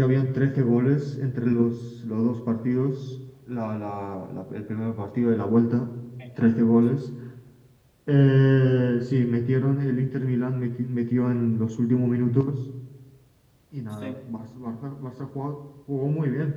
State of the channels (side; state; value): both; identical; correlation 1.00